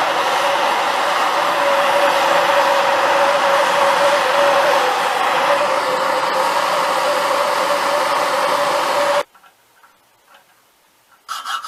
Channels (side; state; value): both; identical; correlation 1.00